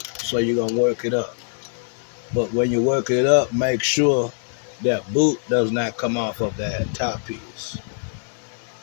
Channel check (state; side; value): silent; right; 63 dB below the other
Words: So you're gonna work it up. But when you work it up, make sure that boot does not come off of that top piece.